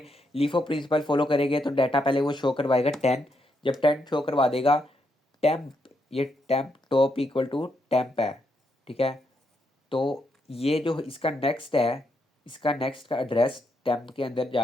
लीफो प्रिंसिपल फॉलो करेंगे तो डाटा पहले वो शो करवाएगा 10, जब 10 शो करवा देगा टेम्प, ये temp top equal to temp है, ठीक है। तो ये जो इसका नेक्स्ट है, इसका नेक्स्ट का एड्रेस टेम्प के अंदर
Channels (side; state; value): both; normal; correlation 0.79